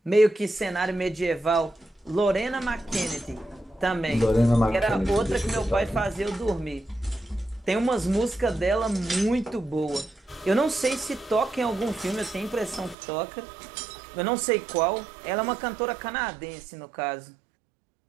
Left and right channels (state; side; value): drops out; left; at 13.0 s